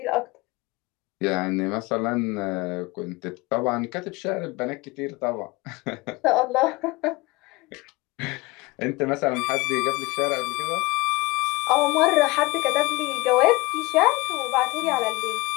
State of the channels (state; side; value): quieter; right; 22.9 dB